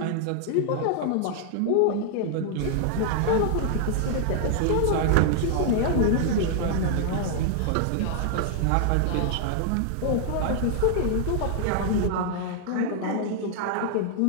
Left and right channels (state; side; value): different; both; correlation 0.00